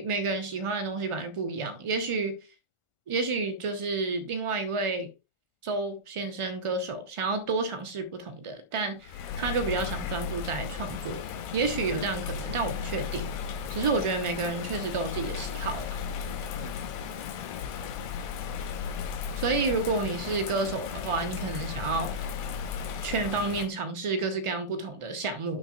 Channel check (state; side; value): late; left; 1.4 ms